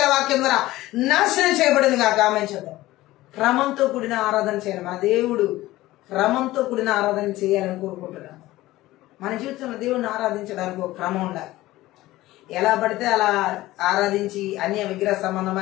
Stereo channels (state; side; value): quieter; right; 17.1 dB